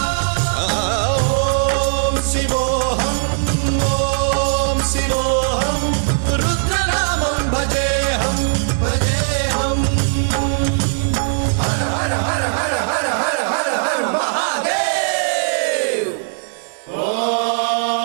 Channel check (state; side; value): silent; left; digital silence